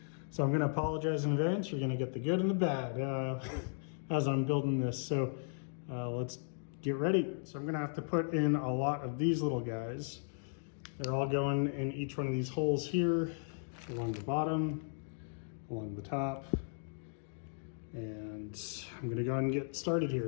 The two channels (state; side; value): silent; right; digital silence